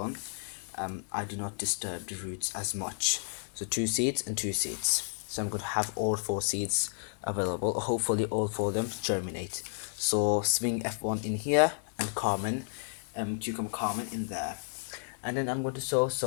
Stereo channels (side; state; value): right; silent; digital silence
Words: I do not disturb the roots as much. So 2 seeds and 2 seeds. So I'm going to have all 4 seeds available. Hopefully all 4 of them germinate. So swing F1 in here and Carmen, cucumber Carmen in there. And then I'm going to sow